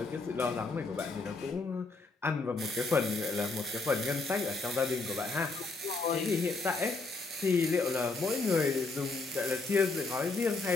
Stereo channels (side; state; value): right; quieter; 3.8 dB